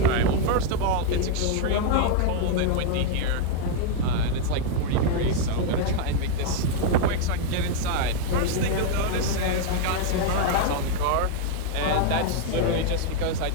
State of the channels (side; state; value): both; different; correlation 0.00